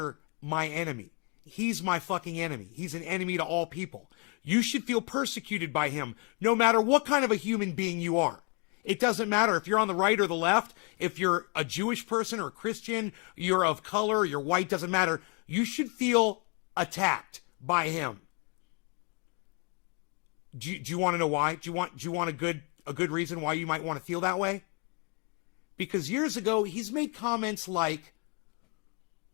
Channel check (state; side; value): quieter; right; 34.9 dB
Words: my enemy. He's my fucking enemy. He's an enemy to all people. You should feel persecuted by him, no matter what kind of a human being you are. It doesn't matter if you're on the right or the left, if you're a Jewish person or a Christian, you're of color, you're white, doesn't matter. You should feel attacked by him. Do you want to know why? Do you want a good reason why you might want to feel that way? Because years ago, he's made comments like,